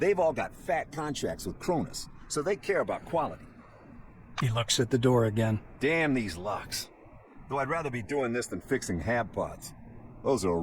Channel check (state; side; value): identical; both; correlation 1.00